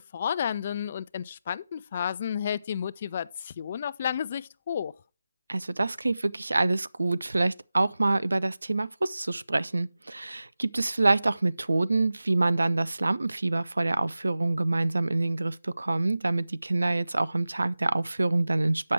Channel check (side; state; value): both; inverted; correlation -0.94